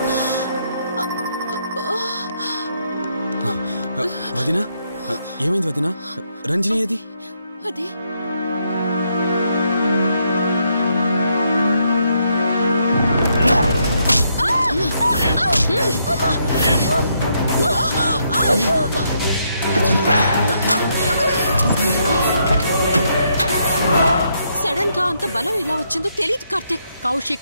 వదినా, ఏమైంది వదినా? రంజని ఏది? అది సడన్ గా అంత బలం ఎలా వచ్చిందో తెలియదు కార్తీక్.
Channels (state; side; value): inverted; both; correlation -0.76